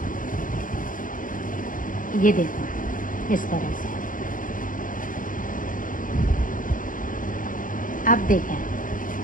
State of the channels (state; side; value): late; right; 0.39 ms